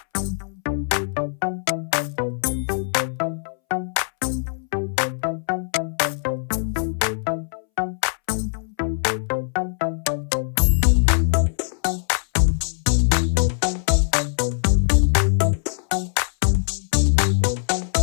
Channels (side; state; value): right; silent; 64 dB below the other